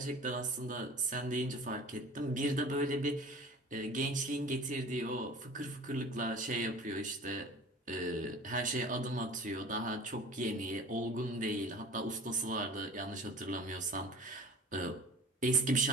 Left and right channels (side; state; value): both; normal; correlation 0.41